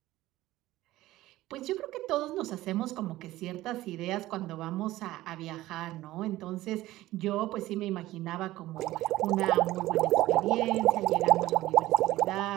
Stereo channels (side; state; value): left; quieter; 16.5 dB